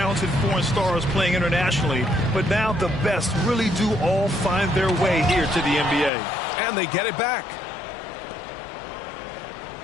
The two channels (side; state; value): right; drops out; at 6.1 s